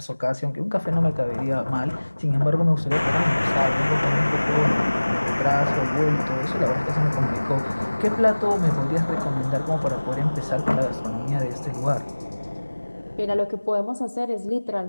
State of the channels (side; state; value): both; inverted; correlation -1.00